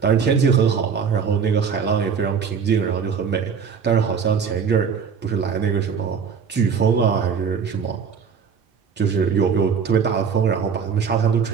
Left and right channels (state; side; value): quieter; left; 6.4 dB